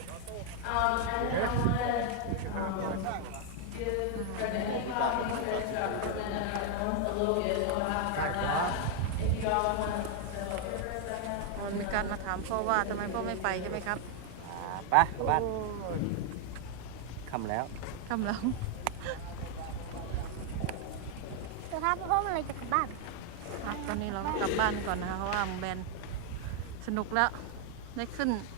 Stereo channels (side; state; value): both; different; correlation 0.00